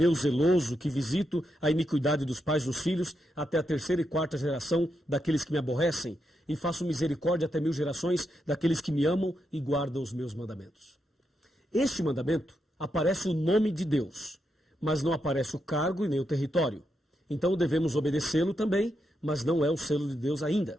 zeloso, que visito a iniquidade dos pais dos filhos, até a 3ª e 4ª geração daqueles que me aborrecem, e faço misericórdia até 1000 gerações daqueles que me amam e guardam os meus mandamentos. Este mandamento aparece o nome de Deus, mas não aparece o cargo e nem o território. Então devemos obedecê-lo também, mas não é o selo de Deus ainda.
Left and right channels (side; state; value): both; normal; correlation 0.83